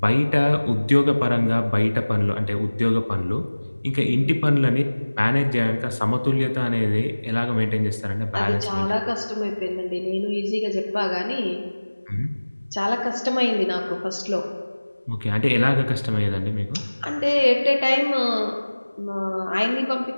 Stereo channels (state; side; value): inverted; both; correlation -1.00